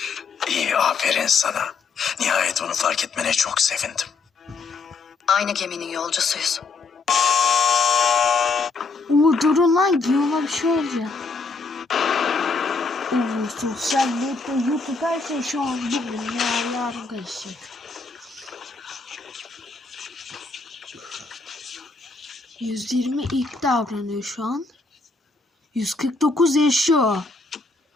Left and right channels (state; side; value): quieter; right; 4.3 dB